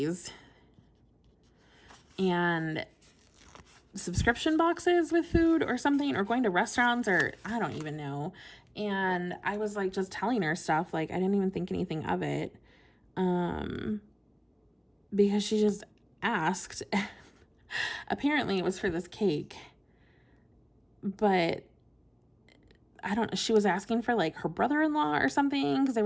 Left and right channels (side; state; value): both; identical; correlation 1.00